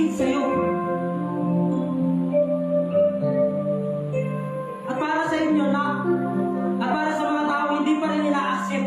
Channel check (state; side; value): identical; both; correlation 1.00